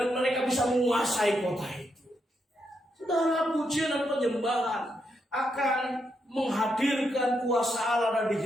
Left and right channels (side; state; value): both; normal; correlation 0.80